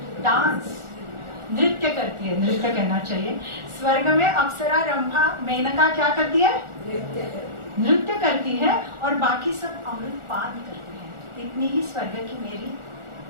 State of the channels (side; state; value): left; late; 1.4 ms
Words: डांस, नृत्य करती है, नृत्य कहना चाहिए। स्वर्ग में अप्सरा, रंभा, मेनका क्या करती है? नृत्य करती है, और बाकी सब अमृत पान करते हैं। इतनी ही स्वर्ग की मेरी